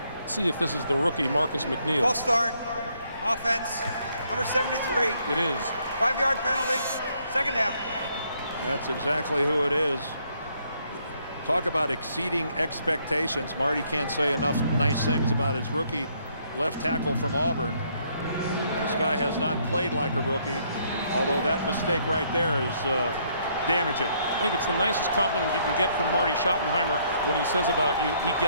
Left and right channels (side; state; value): both; inverted; correlation -0.69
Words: Let's see if this is the rookie Marcus McNeil. False start. Offense. Number 73. It is. 5-yard penalty. Second down. That's exactly who it is. Talk about exceeding expectations. Marty can't say enough nice things about his rookie left tackle from Auburn. This guy has not played like a rookie, although that mistake right there is damaging. I think it's the nicest compliment you can get from Marty Schottenheimer when he says about you, he